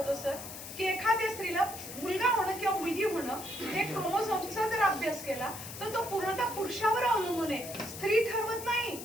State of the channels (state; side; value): noise; left; hiss, 11 dB below the sound